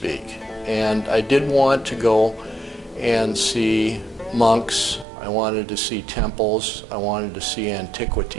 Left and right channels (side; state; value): left; drops out; at 5.1 s